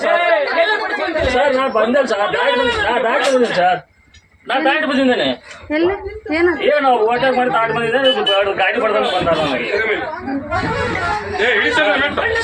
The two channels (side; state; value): both; identical; correlation 1.00